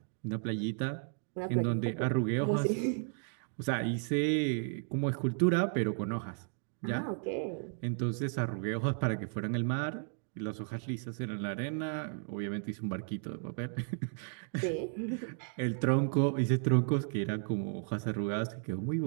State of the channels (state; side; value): silent; left; 55 dB below the other